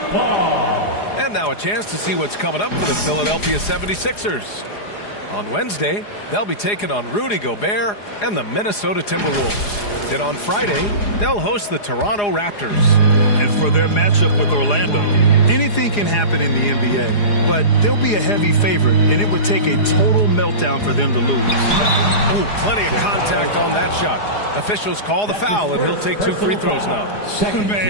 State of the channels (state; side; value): late; right; 4.9 ms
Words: And now a chance to see what's coming up for the Philadelphia 76ers. On Wednesday, they'll be taking on Rudy Gobert and the Minnesota Timberwolves. Then on Friday, they'll host the Toronto Raptors. And for their matchup with Orlando, anything can happen in the NBA, but they'll be a heavy favorite, and it would take a total meltdown for them to lose. Oh, plenty of contact on that shot. Officials call the foul, and he'll take 2 free throws now.